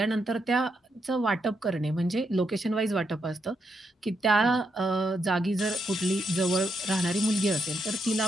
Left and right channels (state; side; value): normal; both; correlation 0.81